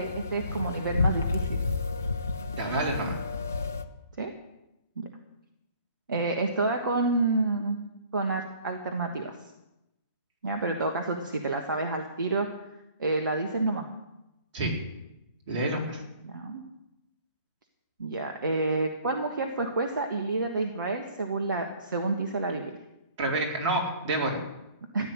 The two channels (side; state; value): both; inverted; correlation -0.55